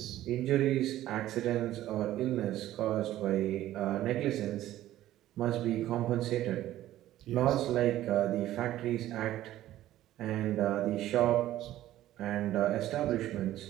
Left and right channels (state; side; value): quieter; left; 14.0 dB